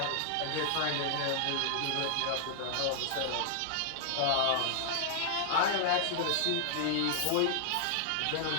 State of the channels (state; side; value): different; both; correlation 0.00